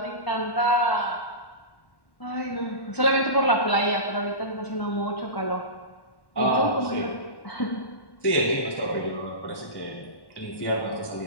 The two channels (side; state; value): right; late; 1.1 ms